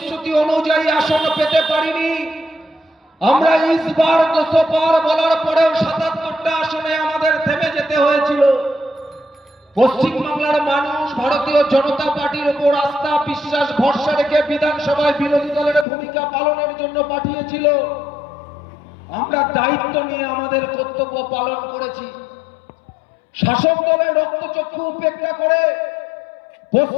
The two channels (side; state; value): right; drops out; at 15.9 s